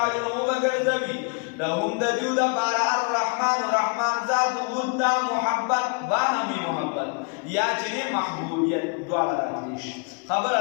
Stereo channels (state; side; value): quieter; right; 35.3 dB